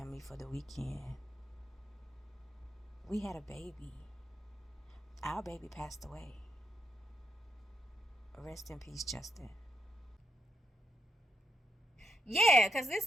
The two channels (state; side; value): normal; both; correlation 0.81